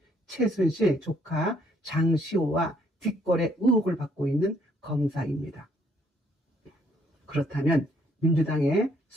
최순실 조카 장시호와 뒷거래 의혹을 받고 있는 검사입니다. 그렇다면 민주당의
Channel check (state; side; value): normal; both; correlation 0.67